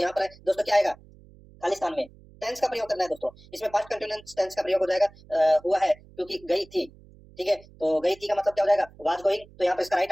पर दोस्तों क्या आएगा, खालिस्तान में टेंस का प्रयोग करना है दोस्तों, इसमें पास्ट कंटिन्यूअस टेंस का प्रयोग हो जाएगा, हुआ है क्योंकि गई थी, ठीक है। तो गई थी का मतलब क्या हो जाएगा, वाज गोइंग। तो यहाँ पर इसका राइट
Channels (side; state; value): right; noise; hum, 24 dB below the sound